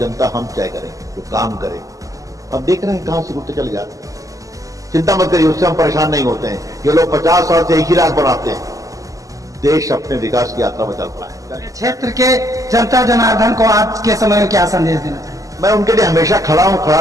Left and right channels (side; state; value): left; late; 0.16 ms